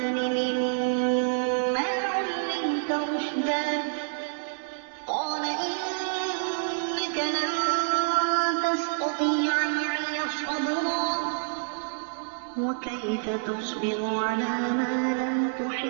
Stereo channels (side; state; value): left; silent; digital silence